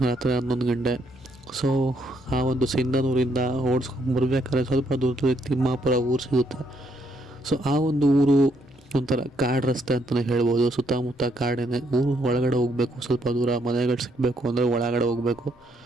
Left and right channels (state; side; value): normal; both; correlation 0.72